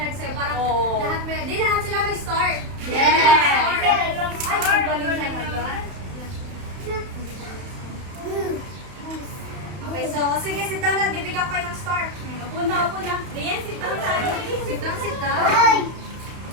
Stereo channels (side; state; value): left; late; 32 ms